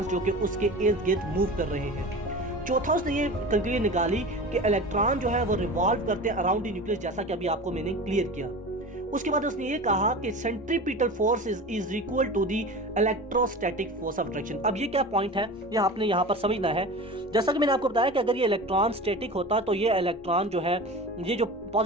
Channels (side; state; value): both; normal; correlation 0.33